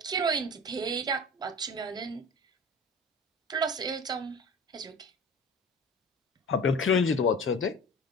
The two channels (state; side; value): normal; both; correlation 0.38